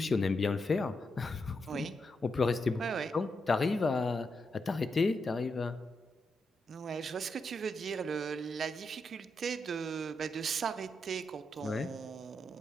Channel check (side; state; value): both; normal; correlation 0.83